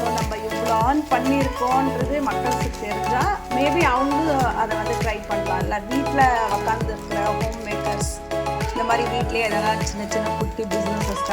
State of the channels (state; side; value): identical; both; correlation 1.00